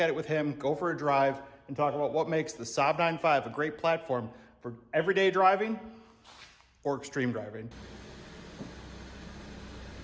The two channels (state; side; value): identical; both; correlation 1.00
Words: it with him, go for a drive, and talk about what makes the Saab 9.5 a great platform for everyday driving or extreme driving.